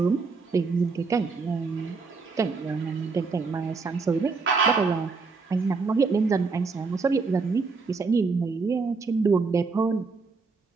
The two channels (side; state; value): left; quieter; 4.4 dB